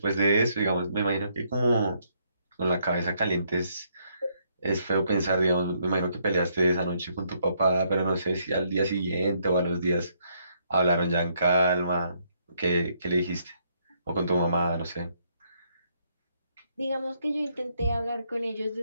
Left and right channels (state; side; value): inverted; both; correlation -0.72